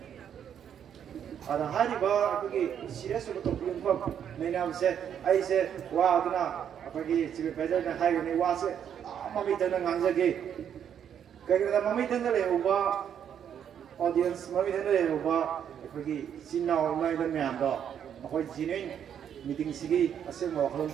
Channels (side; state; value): left; quieter; 8.8 dB